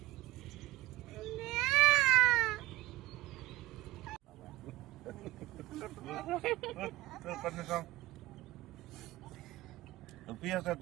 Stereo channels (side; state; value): left; quieter; 18.4 dB